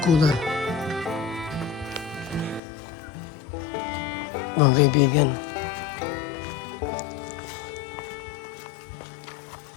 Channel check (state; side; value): drops out; right; at 2.6 s